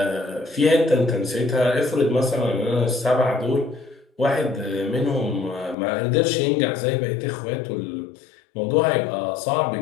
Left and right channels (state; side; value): drops out; right; at 5.8 s